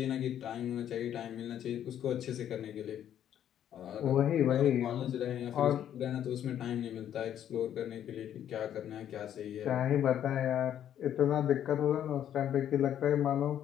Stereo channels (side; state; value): right; quieter; 10.3 dB